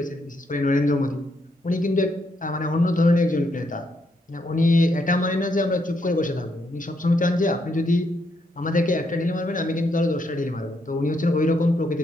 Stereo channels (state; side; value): normal; both; correlation 0.77